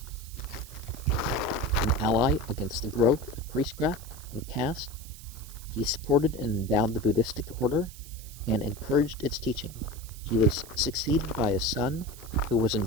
an ally against the growth of priestcraft and caste. He supported and endowed the Buddhistic order and encouraged its teaching. He was succeeded by his son, who was in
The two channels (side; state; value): right; noise; hiss, 17 dB below the sound